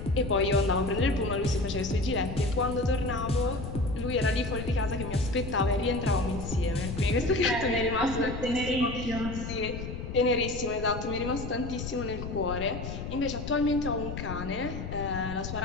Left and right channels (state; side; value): noise; left; rumble, 7 dB below the sound